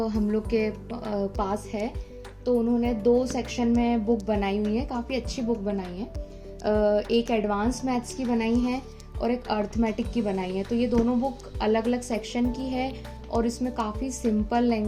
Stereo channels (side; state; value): both; identical; correlation 1.00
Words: हम लोग के पास है, तो उन्होंने 2 सेक्शन में बुक बनाई हुई है, काफ़ी अच्छी बुक बनाई है। एक एडवांस मैथ्स की बनाई है और एक अर्थमेटिक की बनाई है। तो ये दोनों बुक अलग अलग सेक्शन की है और इसमें काफ़ी सिंपल